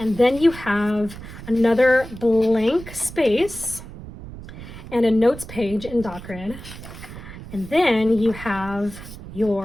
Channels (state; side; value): noise; right; rumble, 14 dB below the sound